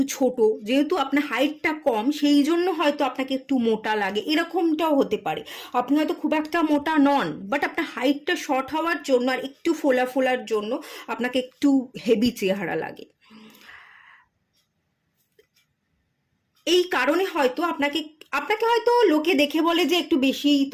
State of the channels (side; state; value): both; identical; correlation 1.00